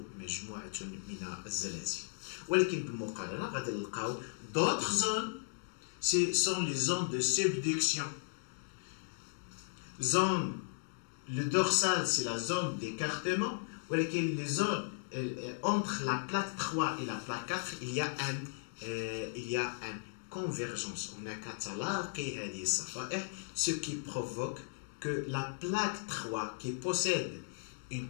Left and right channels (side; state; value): right; silent; digital silence